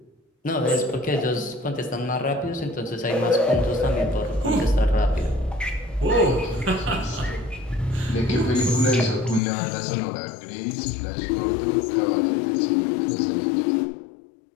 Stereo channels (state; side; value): drops out; right; at 9.4 s